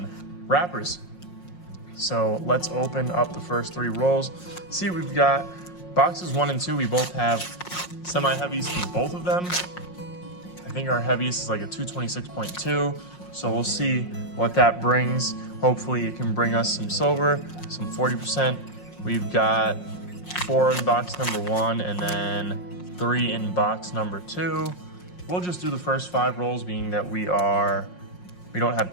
wrappers. So let's open up the first 3 rolls. See what we've got. Boxes 1 and 2, we both have semi-heavies from both of them. I think our heaviest is like a 226.2. So we'll see what that brings. Hopefully it can bring us some silver, some 40%. We've got 4 in box number 1 and then 3 in box number 2. We'll just do the first 5 rolls, being that we don't have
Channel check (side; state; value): right; late; 5.6 ms